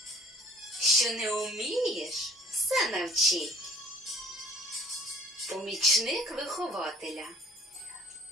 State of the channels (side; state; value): both; normal; correlation 0.53